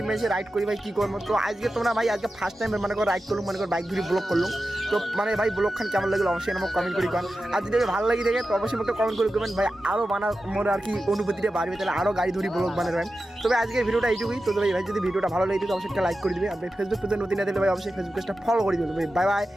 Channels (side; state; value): both; normal; correlation 0.92